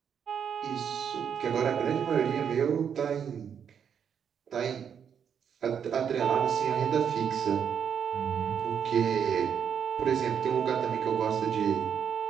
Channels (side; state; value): left; quieter; 7.8 dB